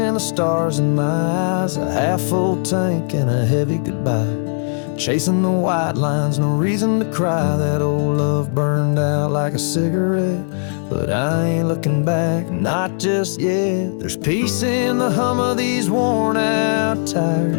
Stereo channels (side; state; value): right; silent; 65 dB below the other